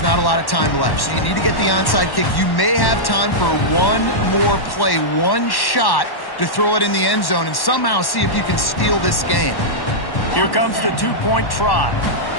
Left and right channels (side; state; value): right; late; 1.1 ms